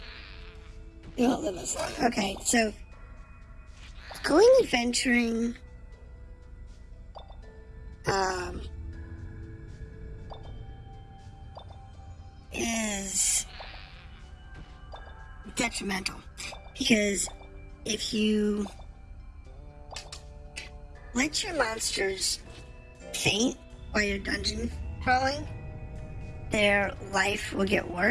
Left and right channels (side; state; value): both; identical; correlation 1.00